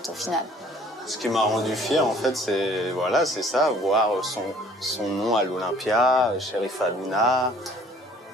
au final. Ce qui m'a rendu fier, en fait, c'est voilà, c'est ça, voir son nom à l'Olympia, Sherifa Aluna,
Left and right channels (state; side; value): normal; both; correlation 0.55